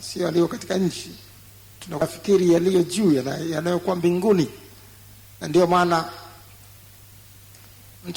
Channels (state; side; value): identical; both; correlation 1.00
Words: sio yaliyo katika nchi. Tunafikiri yaliyo juu, yanayokuwa mbinguni. Na ndio maana